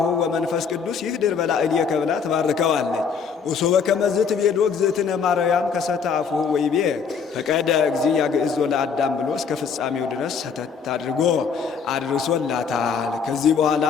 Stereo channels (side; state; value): right; quieter; 6.1 dB